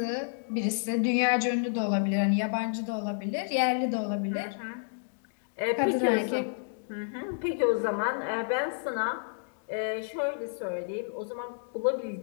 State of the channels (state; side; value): silent; right; digital silence